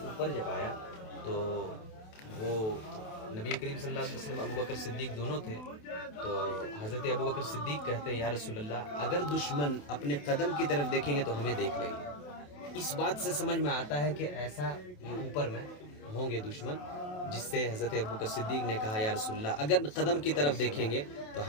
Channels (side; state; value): right; late; 28 ms